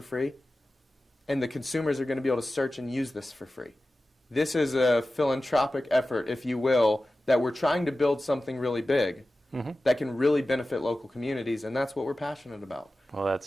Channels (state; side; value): normal; both; correlation 0.95